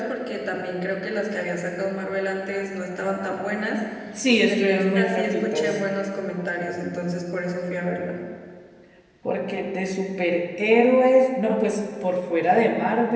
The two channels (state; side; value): identical; both; correlation 1.00